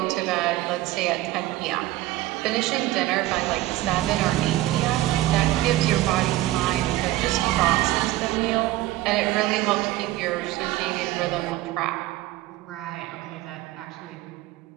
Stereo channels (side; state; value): left; quieter; 16.6 dB